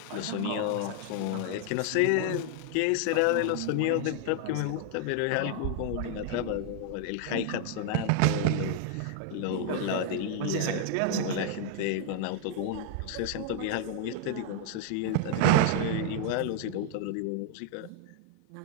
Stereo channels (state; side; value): different; both; correlation 0.00